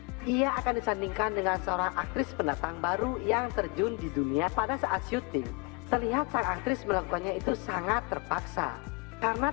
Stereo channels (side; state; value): right; quieter; 29.7 dB